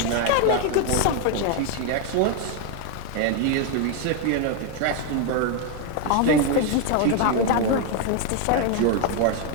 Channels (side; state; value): both; different; correlation 0.01